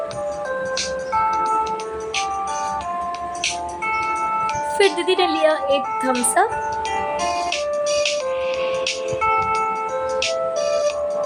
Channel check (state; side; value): identical; both; correlation 1.00